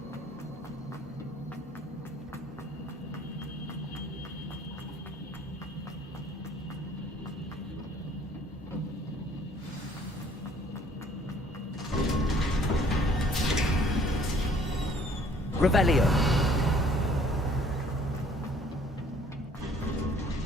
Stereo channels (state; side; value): normal; both; correlation 0.58